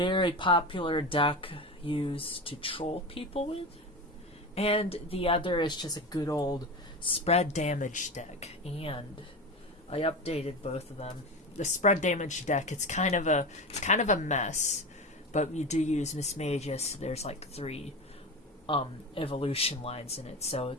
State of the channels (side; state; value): both; normal; correlation 0.24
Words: popular deck used to troll people with. And the other is just a good old spread damage deck. And I updated both of them. The spread damage deck, it's kind of a mess. But we do use Miss Magus. There's like three evolution lines in it, so